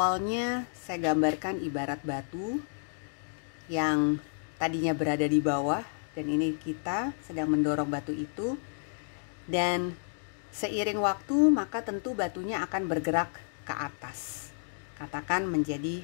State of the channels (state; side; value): silent; right; digital silence